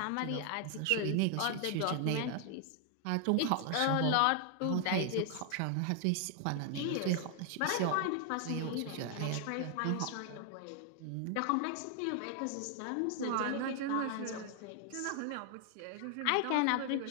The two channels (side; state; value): both; different; correlation 0.00